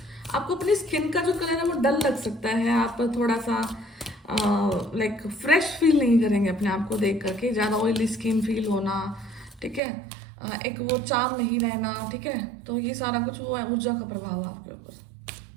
आपको अपनी स्किन का जो कलर है वो डल लग सकता है, आप थोड़ा सा फ्रेश फील नहीं करेंगे अपने आप को देख करके, ज़्यादा ऑयली स्किन फील होना, ठीक है। एक वो चार्म नहीं रहना, ठीक है। तो ये सारा कुछ वो है, ऊर्जा का प्रभाव आपके ऊपर।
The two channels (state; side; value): drops out; left; at 9.8 s